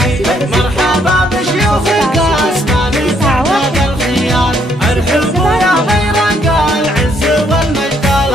مرحبا بشيوخ القاسمان تعداد الخيال ارحبوا يا غير قال العز والمجد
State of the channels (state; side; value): normal; both; correlation 0.69